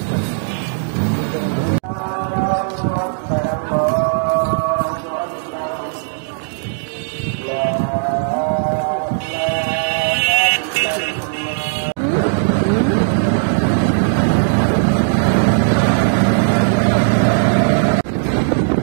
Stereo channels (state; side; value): silent; left; digital silence